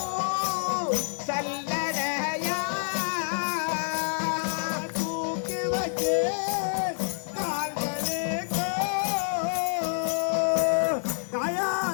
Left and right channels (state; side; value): silent; right; digital silence